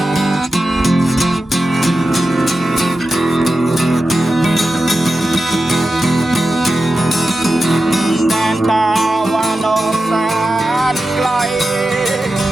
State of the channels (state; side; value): normal; both; correlation 0.92